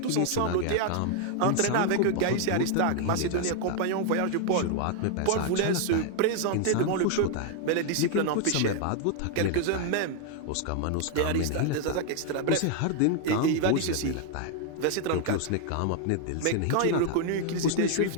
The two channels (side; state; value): both; different; correlation 0.00